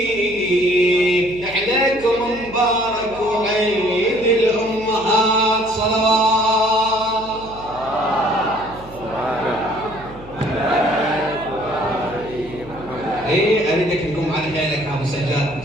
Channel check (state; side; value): noise; right; hum, 18 dB below the sound